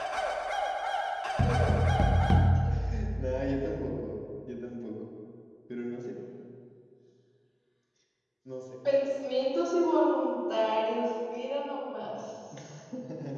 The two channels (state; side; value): identical; both; correlation 1.00